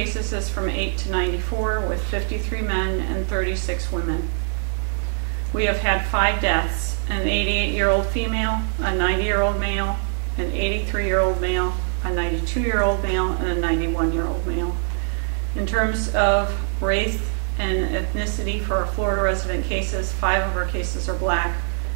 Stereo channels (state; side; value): silent; left; 62 dB below the other